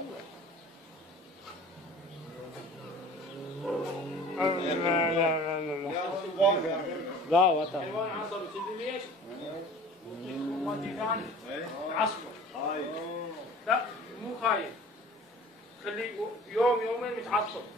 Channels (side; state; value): both; normal; correlation 0.44